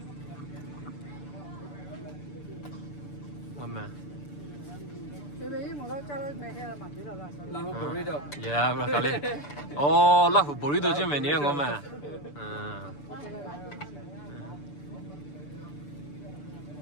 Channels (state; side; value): late; right; 6.9 ms